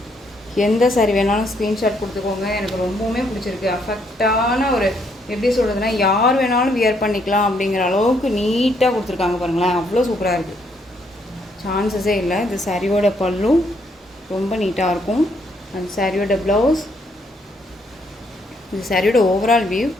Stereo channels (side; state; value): both; normal; correlation 0.72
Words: எந்த சாரி வேணாலும் ஸ்க்ரீன்ஷாட் கொடுத்துக்கோங்க. எனக்கு ரொம்பவுமே பிடிச்சிருக்கு. அஃபெக்டான ஒரு எப்படி சொல்கிறதுனா யார் வேணாலும் வியர் பண்ணிக்கலாம் அப்படிங்கிற அளவுக்கு நீட்டாக கொடுத்துருக்காங்க பாருங்களேன், அவ்வளோ சூப்பராக இருக்குது, சான்சஸே இல்லை. இது சாரியோட பல்லு ரொம்ப நீட்டாக இருக்கும். அண்ட் சாரியோட ப்ளவுஸ், இது சாரியோட ஓவரால் வியூ.